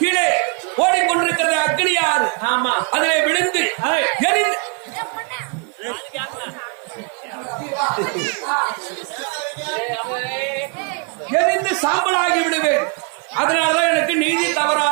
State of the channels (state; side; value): quieter; left; 35.7 dB